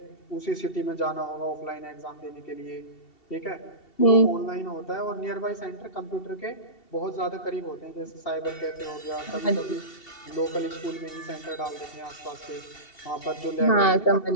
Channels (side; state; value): right; late; 2.7 ms